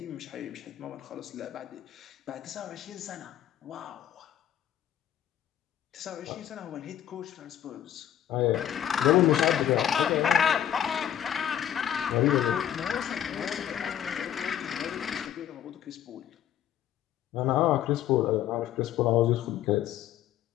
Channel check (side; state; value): right; quieter; 10.7 dB